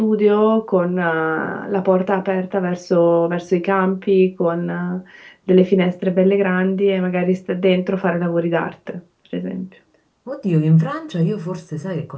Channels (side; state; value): both; identical; correlation 1.00